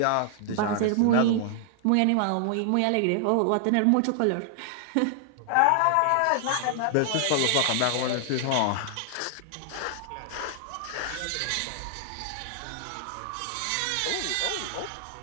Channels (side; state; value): both; different; correlation 0.00